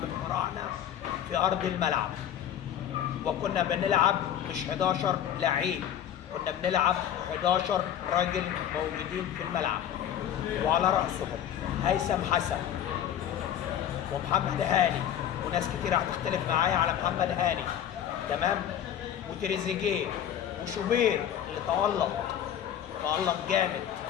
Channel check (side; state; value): right; quieter; 10.2 dB